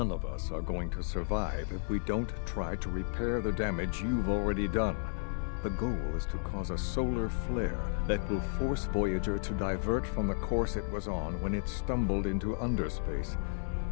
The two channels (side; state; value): right; silent; digital silence